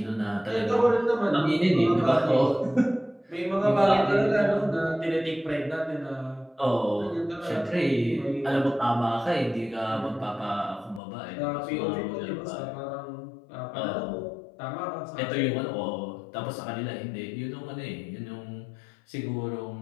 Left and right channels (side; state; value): right; drops out; at 11.0 s